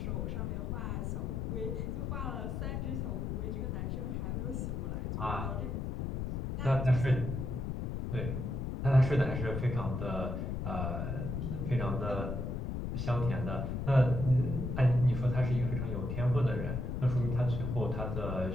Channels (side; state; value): left; noise; rumble, 2 dB below the sound